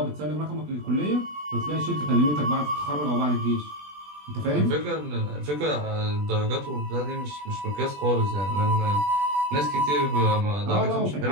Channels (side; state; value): left; late; 20 ms